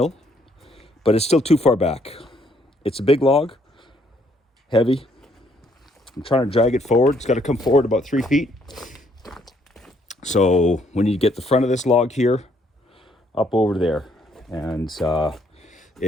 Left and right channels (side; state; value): both; normal; correlation 0.69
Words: but it's still too far back. It's a big log, heavy. I'm trying to drag it forward. It's got to come forward about 3 feet. So we need to get the front of this log here up over there, and I